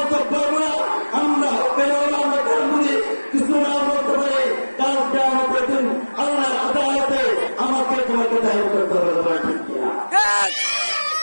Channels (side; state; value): both; inverted; correlation -1.00